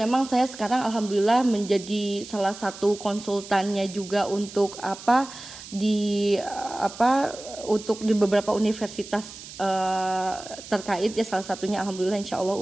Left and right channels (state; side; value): noise; right; hiss, 15 dB below the sound